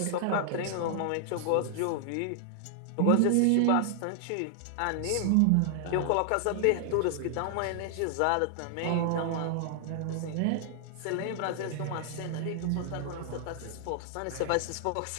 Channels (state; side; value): different; both; correlation 0.00